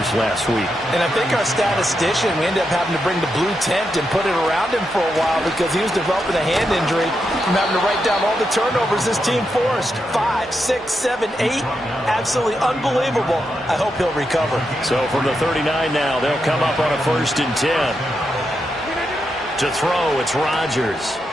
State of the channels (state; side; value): normal; both; correlation 0.85